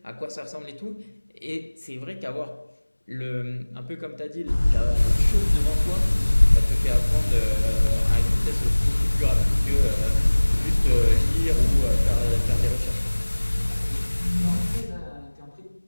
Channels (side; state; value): both; inverted; correlation -1.00